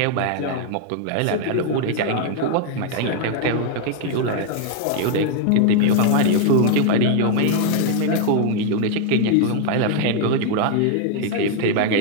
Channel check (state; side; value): different; both; correlation 0.00